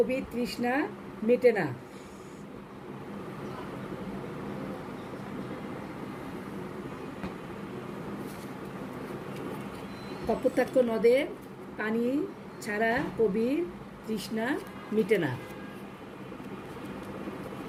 তৃষ্ণা মেটে না? কপোতাক্ষ নদের পানি ছাড়া কবির তৃষ্ণা মিটে না।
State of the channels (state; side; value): identical; both; correlation 1.00